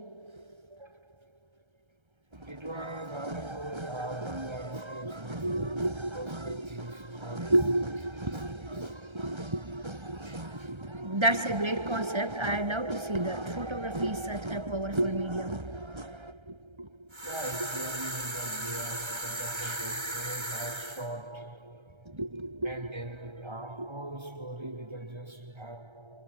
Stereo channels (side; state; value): left; late; 1.3 ms